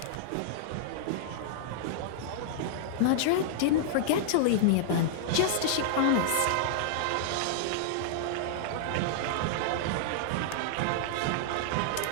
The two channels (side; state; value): both; different; correlation -0.01